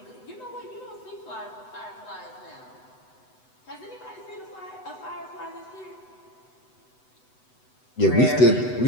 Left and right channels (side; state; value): right; late; 8.0 ms